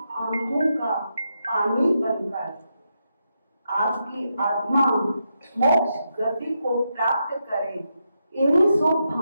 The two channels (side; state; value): both; inverted; correlation -0.84